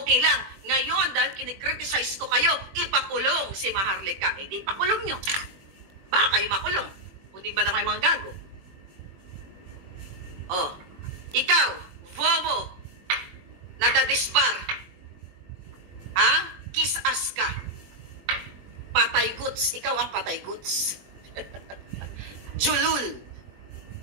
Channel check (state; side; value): late; left; 22 ms